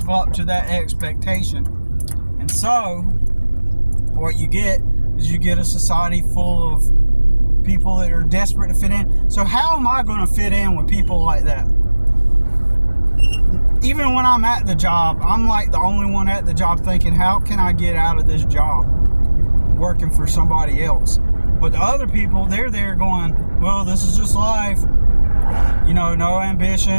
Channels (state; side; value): inverted; both; correlation -1.00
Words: up to that expectation. And so, what you get is you get a society full of people that are desperate to fit in. So how am I going to fit in with people like that? Even when I'm at the job, I'm like the only one at the job thinking, how can I get out of this job working for somebody else? But the other people, they're there going, well, this is just life. You know, no